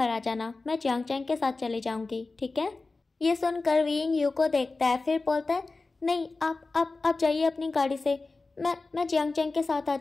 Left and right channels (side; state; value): right; quieter; 3.6 dB